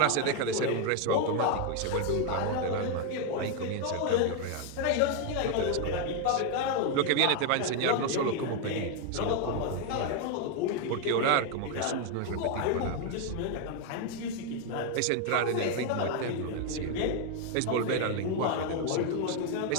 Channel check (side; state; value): both; different; correlation 0.01